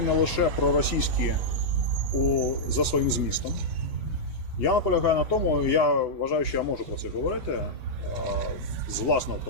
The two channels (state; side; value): normal; both; correlation -0.09